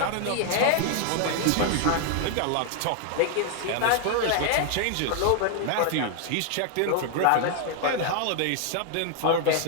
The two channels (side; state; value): both; different; correlation 0.00